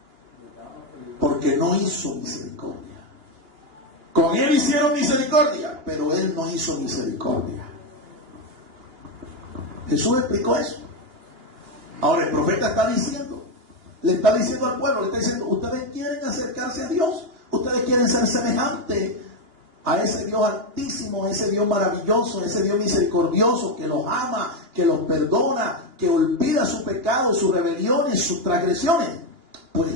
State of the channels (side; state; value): left; late; 2.8 ms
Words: porque no hizo misericordia. Con él hicieron misericordia, pero él no hizo misericordia. Jesús explicó eso. Ahora el profeta le está diciendo al pueblo, le está diciendo, ustedes quieren acercarse a Dios, ustedes quieren ser semejantes a ese Dios altísimo, a ese Dios maravilloso, a ese Dios misericordioso, que los ama, que los perdona, que olvida su pecado, sus rebeliones, sus transgresiones. Pues